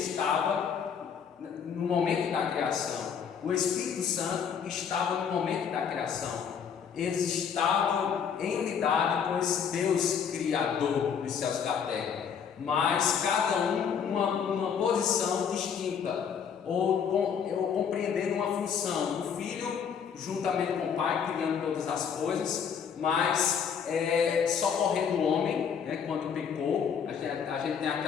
no momento da criação, o Espírito Santo estava no momento da criação. Eles estavam em unidade com esse Deus Criador dos céus e da terra. mas cada um uma posição distinta, ou compreendendo uma função. O filho, juntamente com o pai, criando todas as coisas, mas socorrendo o homem, né, quando pecou. A gente tem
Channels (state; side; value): quieter; right; 7.2 dB